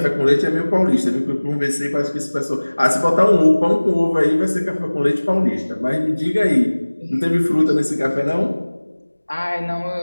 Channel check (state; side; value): inverted; both; correlation -1.00